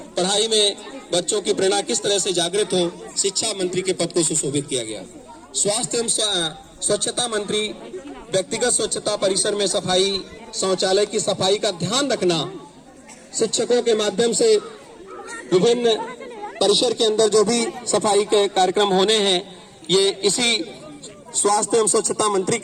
पढ़ाई में बच्चों की प्रेरणा किस तरह से जागृत हो, शिक्षा मंत्री के पद को सुशोभित किया गया। स्वास्थ्य एवं स्वच्छता मंत्री व्यक्तिगत स्वच्छता, परिसर में सफाई, शौचालय की सफाई का ध्यान रखना, शिक्षकों के माध्यम से विभिन्न परिसर के अंदर जो भी सफाई के कार्यक्रम होने हैं ये इसी स्वास्थ्य एवं स्वच्छता मंत्री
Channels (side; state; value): both; identical; correlation 1.00